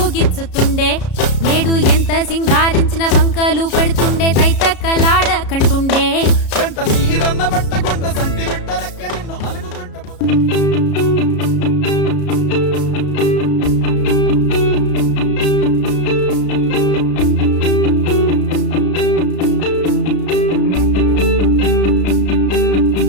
గిచ్చుతుండే నేడు ఎంత సింగారించిన వంకలు పెడుతుండే తైతక్కలాడ కంటుండే కంట నీరన్న పట్టకుండా సంటి బిడ్డ లెక్క నిన్ను అలుగుతుంటే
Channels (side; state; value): right; late; 33 ms